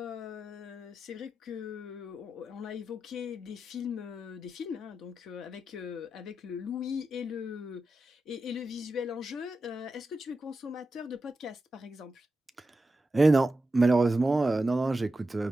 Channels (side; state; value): both; normal; correlation 0.90